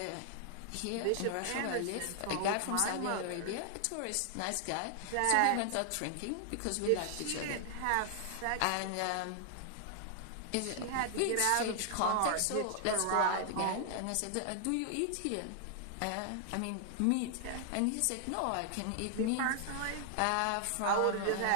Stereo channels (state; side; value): different; both; correlation 0.00